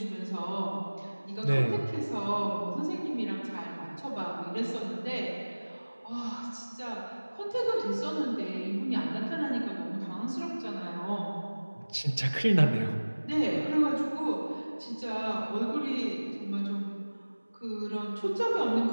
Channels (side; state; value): both; inverted; correlation -1.00